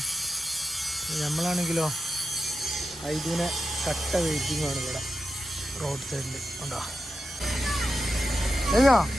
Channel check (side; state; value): both; normal; correlation 0.89